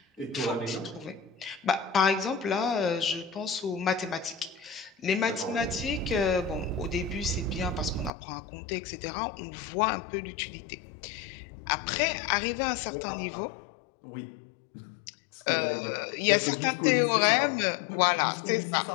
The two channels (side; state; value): right; drops out; at 8.1 s